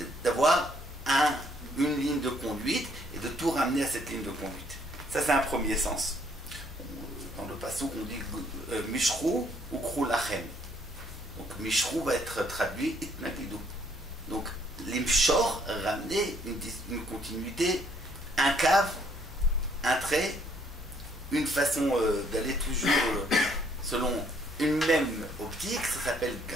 d'avoir une ligne de conduite et de tout ramener à cette ligne de conduite. Ça, c'est un premier sens. Dans le passouk, on dit Mishrou ou Krou Lachem. Donc, Mishrou va être traduit Itnaklidou. Donc, l'imshor, ramener une continuité, un cave, un trait, une façon d'aller toujours selon une même optique, ça s'appelle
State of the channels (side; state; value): both; normal; correlation 0.66